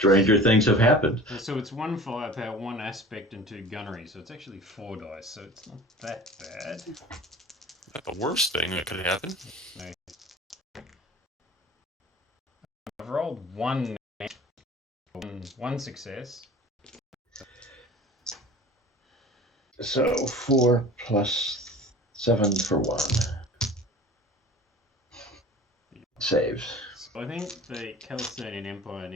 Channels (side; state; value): both; normal; correlation 0.41